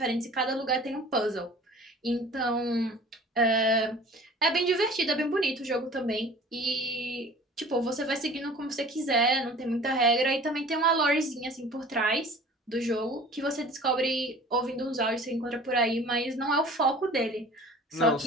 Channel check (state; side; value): normal; both; correlation 0.45